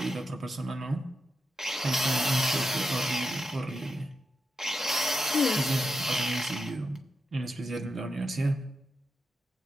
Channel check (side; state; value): both; normal; correlation 0.87